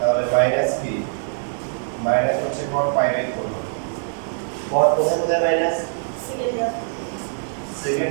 মাইনাস কি, মাইনাস হচ্ছে cot π/4। cot কোথায় কোথায় মাইনাস,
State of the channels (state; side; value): silent; left; 56 dB below the other